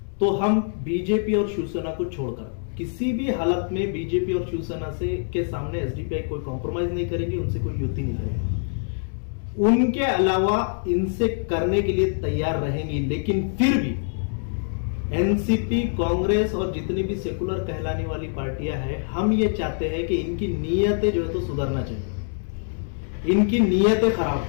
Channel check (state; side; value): silent; right; digital silence